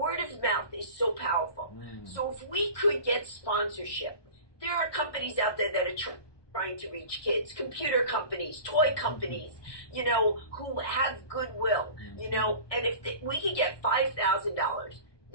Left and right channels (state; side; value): late; right; 1.2 ms